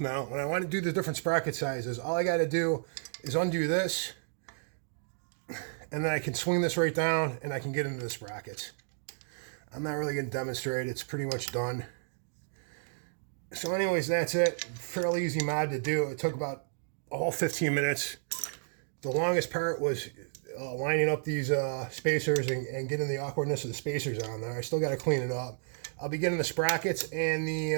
now, when I want to do the different sprocket sizes, all I got to do is undo this, and then I can swing this right down and I can get into the sprockets. I'm not really going to demonstrate. It's pretty much done. So anyways, that's it. Fairly easy mod to do. It took about a whole 15 minutes. The longest part was lining up these spacers and getting the awkwardness of the spacers on there. I still got to clean it up. I'll be getting the sprockets and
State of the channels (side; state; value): left; silent; digital silence